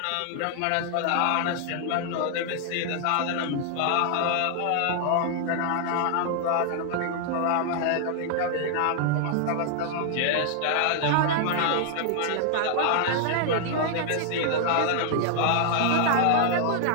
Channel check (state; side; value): different; both; correlation 0.00